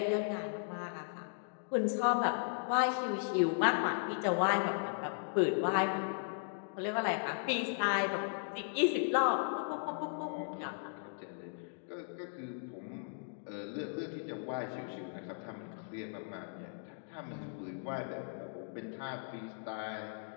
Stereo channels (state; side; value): silent; right; digital silence